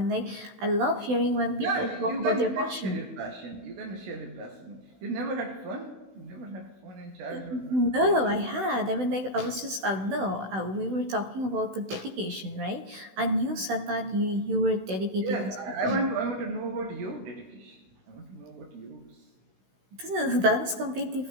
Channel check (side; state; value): left; late; 16 ms